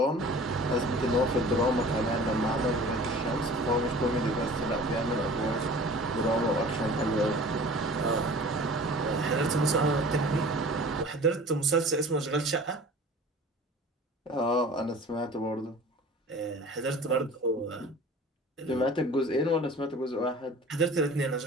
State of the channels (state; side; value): normal; both; correlation 0.43